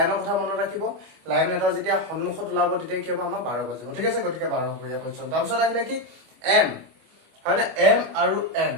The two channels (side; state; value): left; late; 25 ms